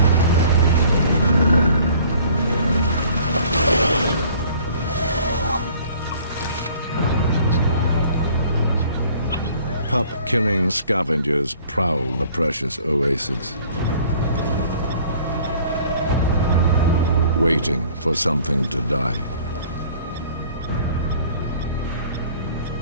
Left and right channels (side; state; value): both; inverted; correlation -0.53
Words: Pup-killing scavengers prowl the precious oasis, waiting for something to die.